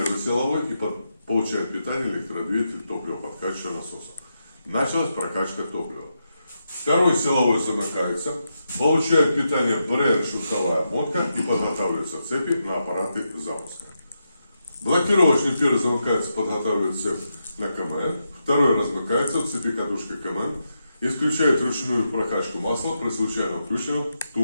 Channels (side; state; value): both; inverted; correlation -0.85